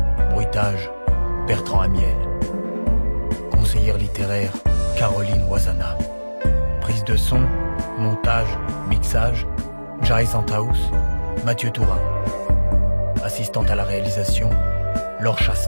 Bruitage, Bertrand Amiel. Conseillère littéraire, Caroline Wazana. Prise de son, montage, mixage, Jai Santaous, Mathieu Tourin. Assistante à la réalisation, Laure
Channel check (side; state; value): both; inverted; correlation -1.00